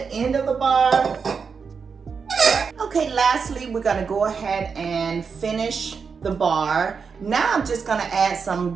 end of the bar. Okay, lastly, we're gonna go ahead and finish the bar. Now I'm just gonna add some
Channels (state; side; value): quieter; left; 5.7 dB